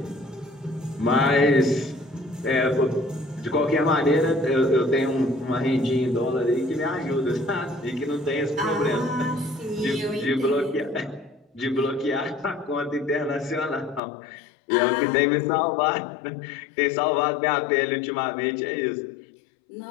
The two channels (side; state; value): right; drops out; at 14.0 s